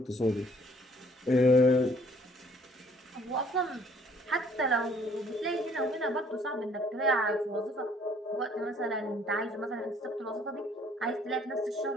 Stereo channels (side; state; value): both; normal; correlation 0.60